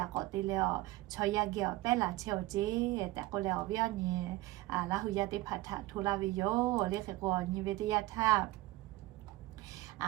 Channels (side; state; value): left; quieter; 18.2 dB